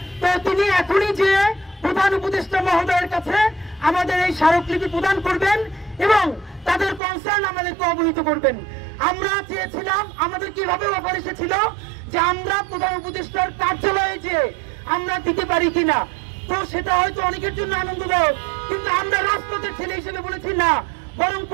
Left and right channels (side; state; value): left; drops out; at 7.0 s